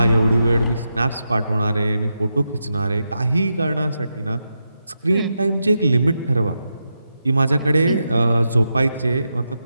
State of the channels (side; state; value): both; inverted; correlation -0.86